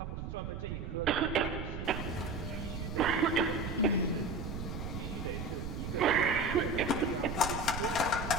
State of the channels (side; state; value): right; noise; rumble, 6 dB below the sound